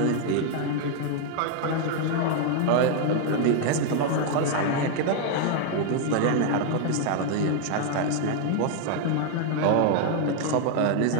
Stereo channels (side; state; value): both; different; correlation 0.00